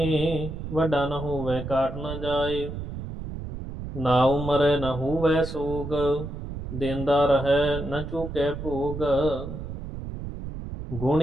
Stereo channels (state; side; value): noise; right; rumble, 8 dB below the sound